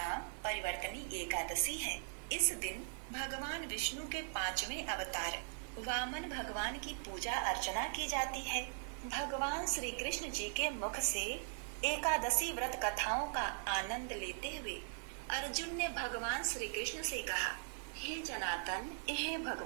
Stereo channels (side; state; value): left; silent; digital silence